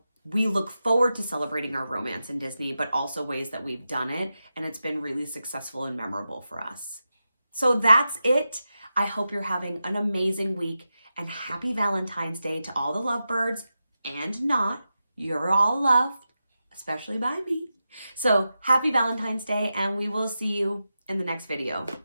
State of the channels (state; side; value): inverted; both; correlation -0.90